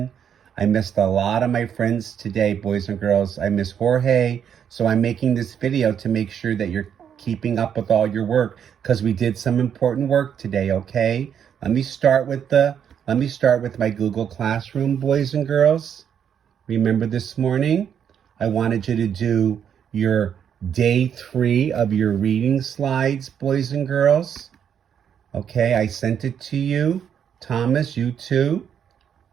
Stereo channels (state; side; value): quieter; left; 8.4 dB